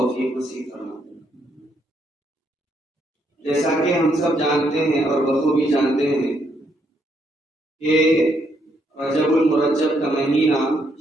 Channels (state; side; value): normal; both; correlation 0.74